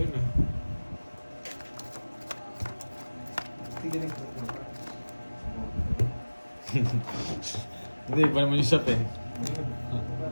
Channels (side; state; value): both; inverted; correlation -1.00